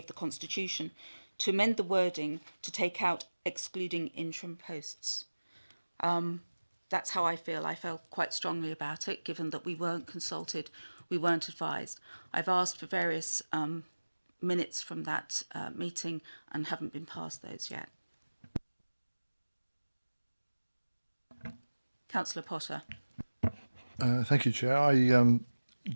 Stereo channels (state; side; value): inverted; both; correlation -1.00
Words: the constitution to amend the wording to take out excluding interim posts. That's how I feel. I felt quite strongly about it, given that we weren't consulted, we weren't advised. I've asked for various minutes from that meeting and haven't been passed those yet. Councillor Potter. Thank you, Chair. I